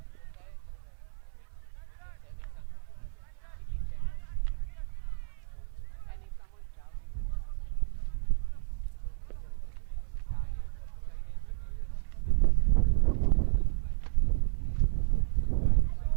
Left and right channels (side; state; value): left; silent; 57 dB below the other